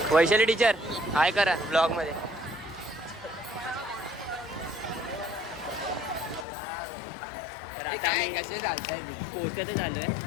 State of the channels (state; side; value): drops out; right; at 6.5 s